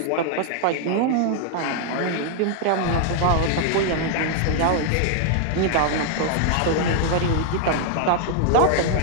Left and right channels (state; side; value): different; both; correlation 0.00